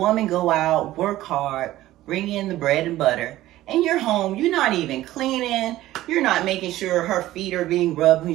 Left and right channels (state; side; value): quieter; left; 15.3 dB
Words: go out, work hard, bring in the bread and butter, and you're home, you're not even cleaning, you're not making sure her feet are being rubbed